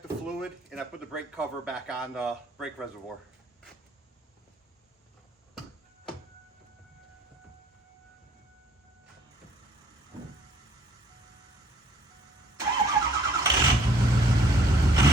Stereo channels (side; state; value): both; normal; correlation 0.60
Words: the fluid and I put the brake cover back on the brake reservoir.